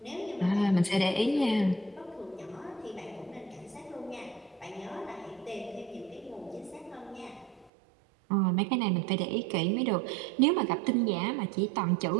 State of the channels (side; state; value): left; drops out; at 7.7 s